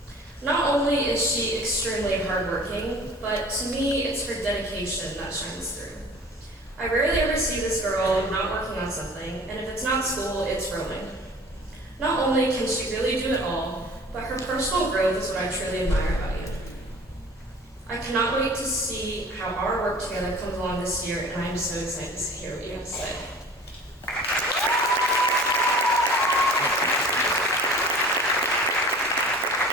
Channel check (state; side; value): normal; both; correlation 0.44